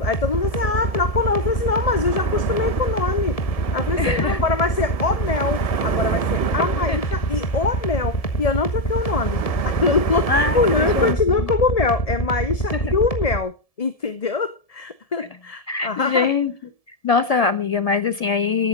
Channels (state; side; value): late; right; 1.7 ms